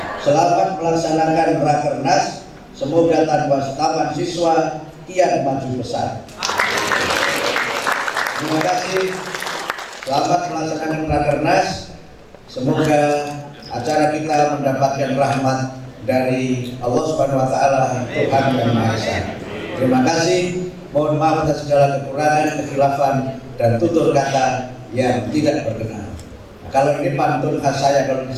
Selamat melaksanakan Rakernas, semoga taman siswa kian maju besar. Terima kasih. Selamat melaksanakan Rakernas, semoga acara kita mendapatkan rahmat dari Allah Subhanahu wa Ta'ala, Tuhan yang Maha Esa. Terima kasih. Mohon maaf atas segala kekurangan, kekhilafan, dan tutur kata yang tidak berkenan. Kalau ini pantun khas saya, kalau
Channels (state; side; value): identical; both; correlation 1.00